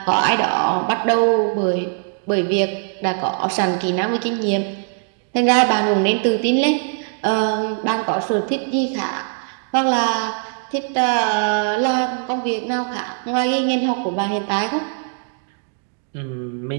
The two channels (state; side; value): silent; left; 56 dB below the other